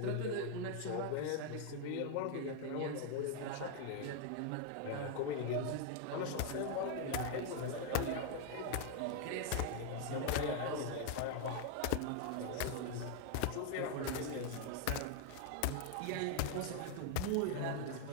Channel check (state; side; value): different; both; correlation 0.00